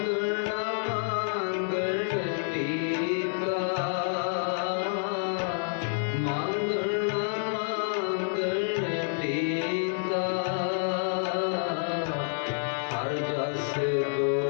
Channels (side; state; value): right; silent; 59 dB below the other